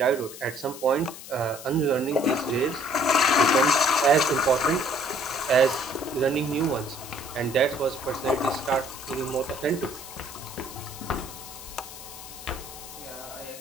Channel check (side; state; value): left; noise; hiss, 14 dB below the sound